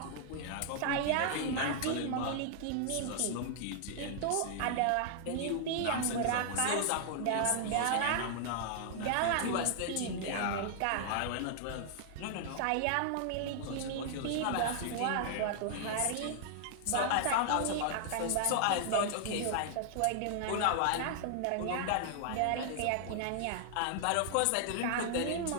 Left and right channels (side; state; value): both; different; correlation -0.01